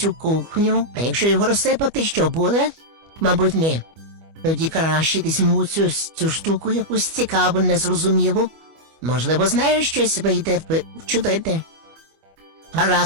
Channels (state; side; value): late; left; 25 ms